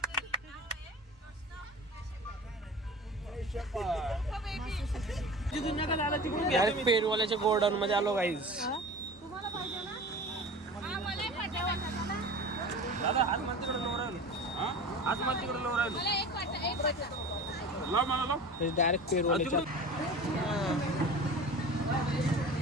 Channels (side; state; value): both; normal; correlation 0.36